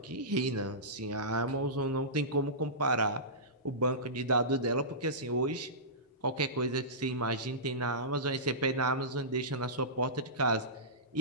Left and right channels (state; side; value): normal; both; correlation -0.19